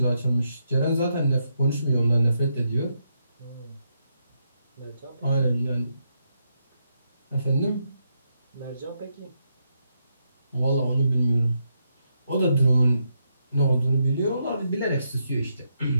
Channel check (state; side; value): inverted; both; correlation -0.80